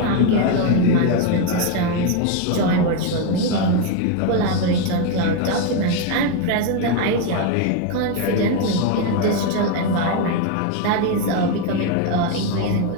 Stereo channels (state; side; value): different; both; correlation 0.02